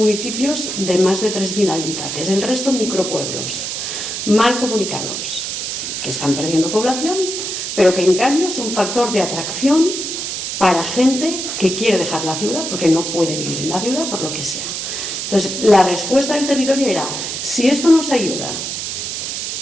de más de 3.000 habitantes, el resto micropueblos, mal comunicados, que están perdiendo población, pero que en cambio son factor de atracción para gente que quiere dejar la ciudad porque no puede vivir en la ciudad por lo que sea. Entonces, la respuesta del territorio era, si esto nos ayuda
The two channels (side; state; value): right; noise; hiss, 4 dB below the sound